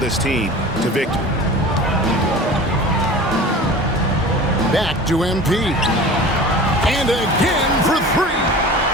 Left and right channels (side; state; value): both; normal; correlation 0.38